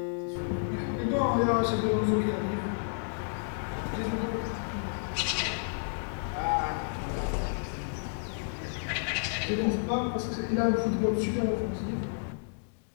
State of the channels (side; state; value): right; silent; digital silence